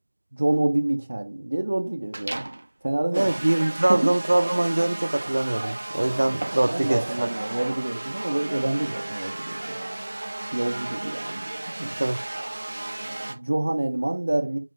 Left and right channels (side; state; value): both; inverted; correlation -1.00